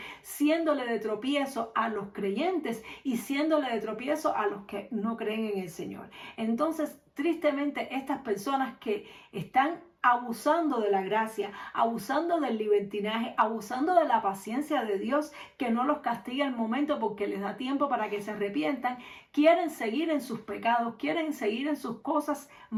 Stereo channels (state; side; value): identical; both; correlation 1.00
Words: siéndole de tropiezo a los creyentes y siéndole de tropiezo a los que no creen en el Señor. Entonces, tristemente, estas personas que están abusando de la gracia, abusando del libertinaje, abusando de la paciencia de Dios, que no los castiga al momento porque les da tiempo para que se arrepientan, quieren seguir en sus pecados, quieren seguir en sus cosas